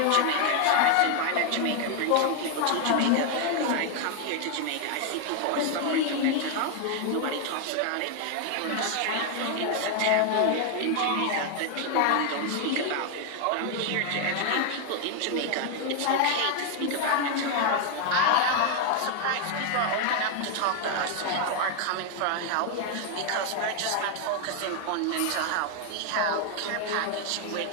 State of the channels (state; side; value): different; both; correlation 0.00